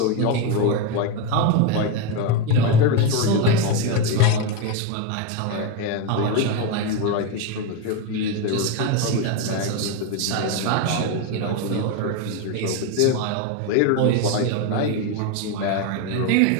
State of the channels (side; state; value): both; different; correlation 0.03